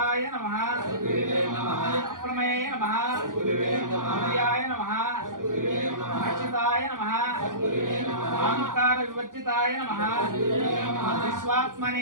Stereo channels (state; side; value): late; left; 0.90 ms